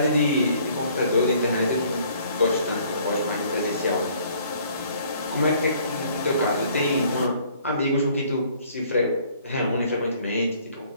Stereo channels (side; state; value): both; inverted; correlation -0.59